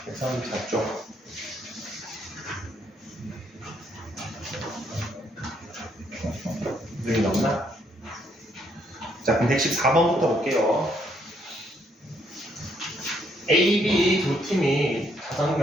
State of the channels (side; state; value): both; normal; correlation 0.71